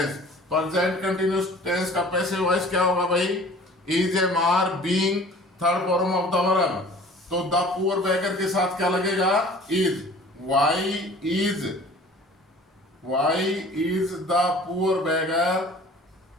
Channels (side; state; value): both; normal; correlation 0.47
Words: Present continuous tense का पैसिव वॉइस क्या होगा भाई, is am are being third form of the verb, तो द पुअर बेगर के साथ क्या लगेगा, is, why is, Why is the poor beggar?